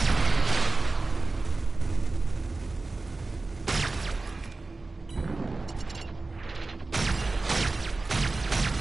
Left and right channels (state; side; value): quieter; left; 3.4 dB